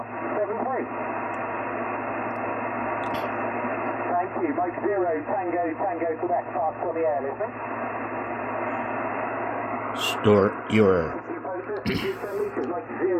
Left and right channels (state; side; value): identical; both; correlation 1.00